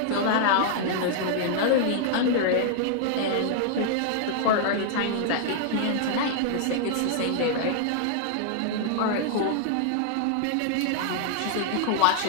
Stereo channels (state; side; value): different; both; correlation -0.01